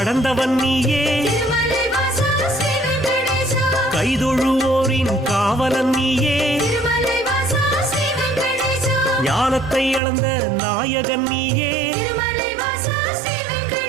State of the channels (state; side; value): drops out; left; at 10.0 s